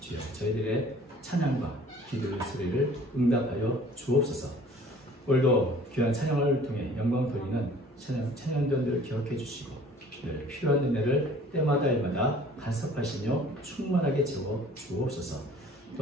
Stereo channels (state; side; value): normal; both; correlation 0.51